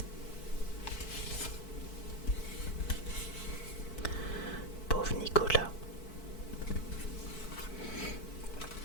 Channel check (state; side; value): late; right; 4.6 ms